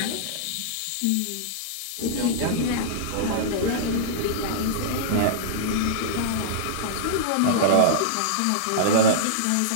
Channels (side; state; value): both; different; correlation -0.02